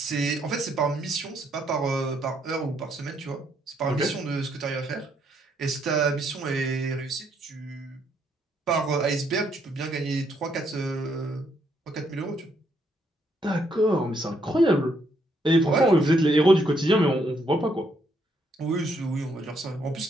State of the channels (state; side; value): normal; both; correlation 0.73